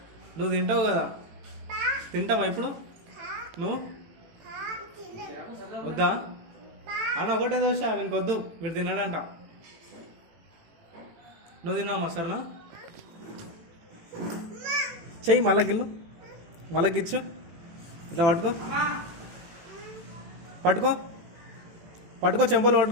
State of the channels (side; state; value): left; late; 18 ms